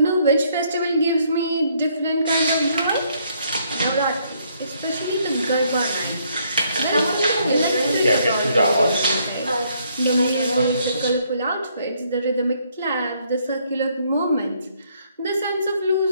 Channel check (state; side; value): inverted; both; correlation -0.69